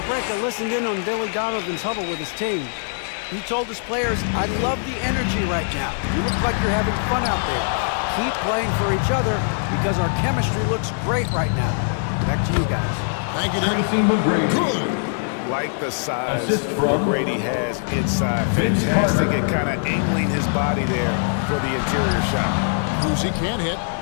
break, I listened in on Billy Donovan's huddle with his team. He told his players, I love the energy right now. You look like you're having fun out there. Keep playing for each other because our chemistry looks great right now. Back to you guys. Thank you, Dick. McGrady. Good. Like the size McGrady has inside. Fantastic at kind of angling his body there for the interior shot. Uzi can't hit.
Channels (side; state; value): right; silent; 63 dB below the other